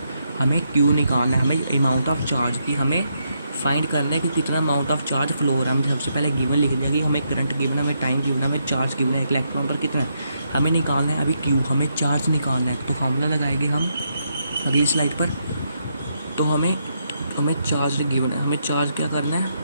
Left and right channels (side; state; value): both; inverted; correlation -0.79